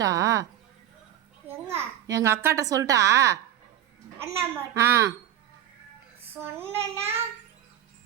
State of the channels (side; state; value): left; quieter; 11.7 dB